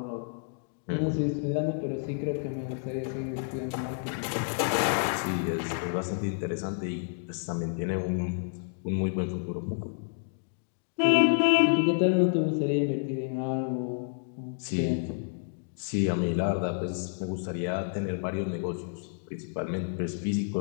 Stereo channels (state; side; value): silent; right; digital silence